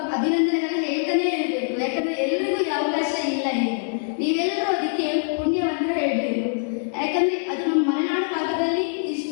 ಅಭಿನಂದನೆಗಳನ್ನ ಹೇಳ್ತಾನೆ ಇರಬೇಕು. ಯಾಕಂದ್ರೆ ಎಲ್ರಿಗೂ ಈ ಅವಕಾಶ ಇಲ್ಲ ಇದೆ. ನೀವೆಲ್ಲರೂ ಅದಕ್ಕೆ ಪುಣ್ಯವಂತ ಹೇಳ್ಬೇಕು. ಯಾಕಂದ್ರೆ ಅದು ನಮ್ಮ ಮಲೆನಾಡು ಭಾಗದಲ್ಲಿ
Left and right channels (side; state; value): right; silent; 58 dB below the other